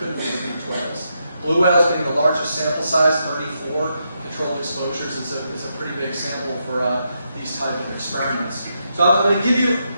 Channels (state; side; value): inverted; both; correlation -0.82